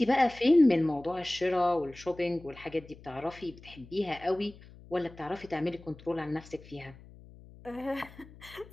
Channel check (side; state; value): left; noise; hum, 20 dB below the sound